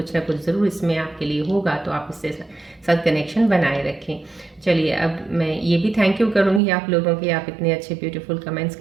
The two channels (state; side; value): drops out; left; at 6.6 s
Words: ना कुछ ज़रूर इसमें आपके लिए होगा, तो आप इससे साथ कनेक्शन बनाए रखें। चलिए अब मैं ये भी थैंक यू करूँगी आप लोगों के, आप इतने अच्छे ब्यूटीफुल कमेंट्स